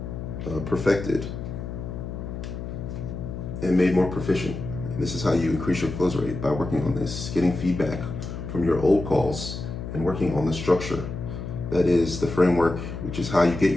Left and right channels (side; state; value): left; noise; hum, 7 dB below the sound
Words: perfected, and made more proficient. And this is how you increase your close rate, by working on this, getting feedback from your old calls and working on the structure. That is the framework, which is how you get